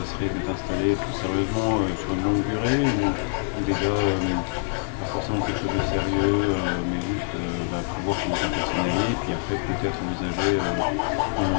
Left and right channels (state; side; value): silent; right; digital silence